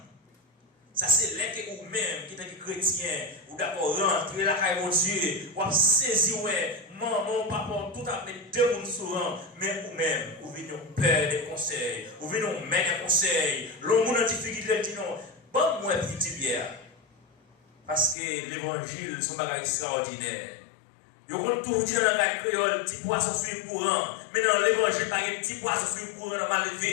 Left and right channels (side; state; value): right; drops out; at 18.2 s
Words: Ça c'est là que vous-même, qui êtes chrétien, vous d'accord rentrer la caille de Dieu, vous avez saisi, ouais, maman, papa, tout à fait deux mondes souvent, mais vous-même, vous venez nous père des conseils, vous venez nous mettre des conseils, l'homme en difficulté dit non, bon, moi, petit bière. Parce que l'évangile, c'est un bagage extraordinaire. Vous comptez toujours dire dans la créole, petit poisson sur le courant, mais dans l'évangile, il n'y a pas de petit poisson sur le courant mal